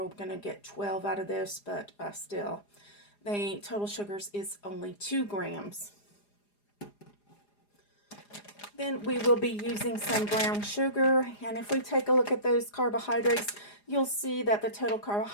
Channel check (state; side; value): late; right; 4.9 ms